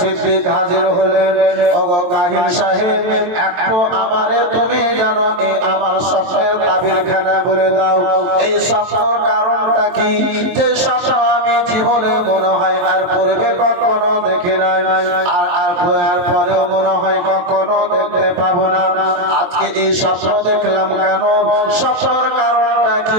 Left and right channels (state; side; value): late; left; 23 ms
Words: হাজির হলেন ওগো কাহিন সাহেব একটু আমারে তুমি জানো এই আমার স্বপ্নের তাবিরখানা বলে দাও এই স্বপ্নের কারণটা কি যে স্বপ্ন আমি জীবনে মনে হয় আর পূর্বে কখনো দেখি নাই আর পরেও মনে হয় কখনো দেখতে পাবো না আজকে এই স্বপ্ন দেখলাম কেন স্বপ্নের কারণটা কি